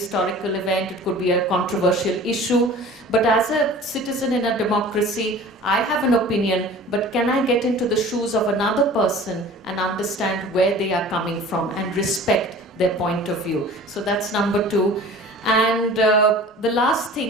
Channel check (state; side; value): normal; both; correlation 0.43